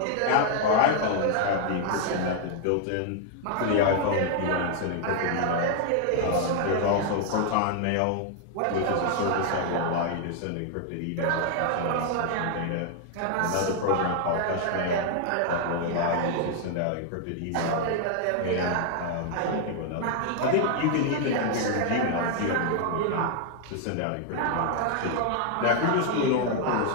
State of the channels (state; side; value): different; both; correlation 0.00